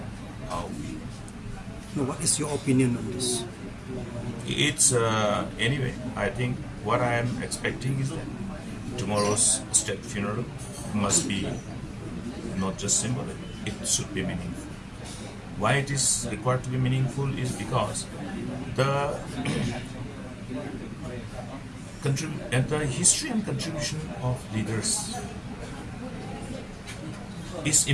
how we. Now, what is your opinion on this? It's anyway. I think what I am expecting is that tomorrow's state funeral must be not just symbolic; it should be meaningful. Why it is required to be meaningful is because the the history and contribution of leaders is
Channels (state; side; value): identical; both; correlation 1.00